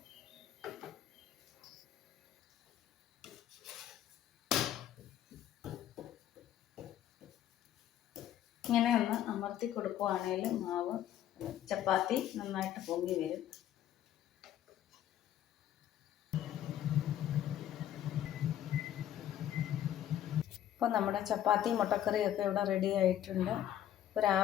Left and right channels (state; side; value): quieter; right; 11.5 dB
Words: ഇങ്ങനെ ഒന്ന് അമർത്തി കൊടുക്കുവാണെങ്കിൽ മാവ് ചപ്പാത്തി നന്നായിട്ട് പൊങ്ങി വരും. ഇപ്പോൾ നമ്മുടെ ചപ്പാത്തി മുട്ടക്കറിയൊക്കെ ഇവിടെ റെഡി ആയിട്ടുണ്ട്. ഇപ്പോൾ